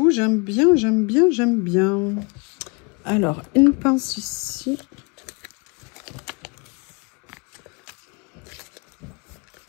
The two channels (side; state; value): right; quieter; 31.4 dB